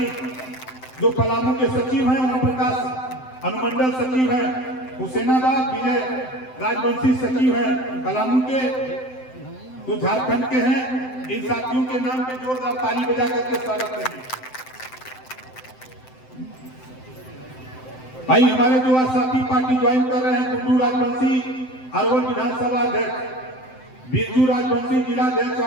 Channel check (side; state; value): right; late; 7.8 ms